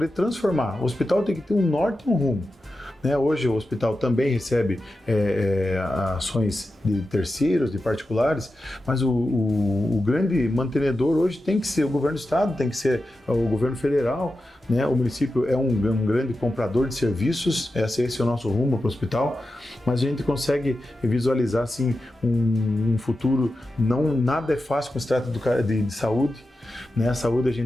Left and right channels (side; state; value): both; normal; correlation 0.91